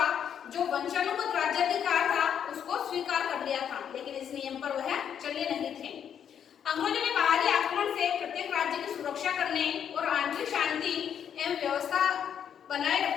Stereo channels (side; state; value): right; quieter; 8.6 dB